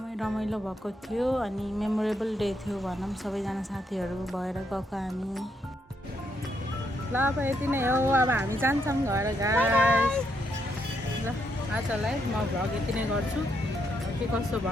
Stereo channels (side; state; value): both; normal; correlation 0.77